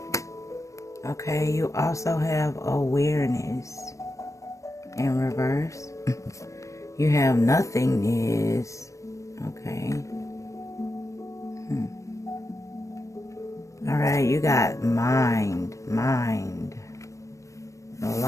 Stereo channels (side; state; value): right; late; 0.15 ms